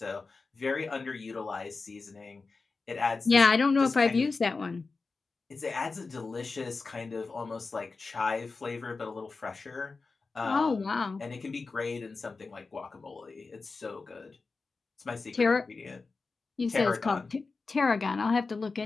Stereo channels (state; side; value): quieter; right; 4.1 dB